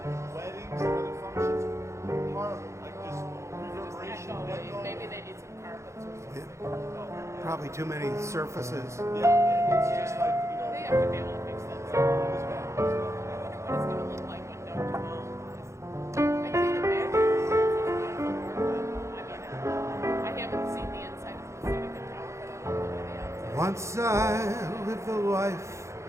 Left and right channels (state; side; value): late; left; 0.14 ms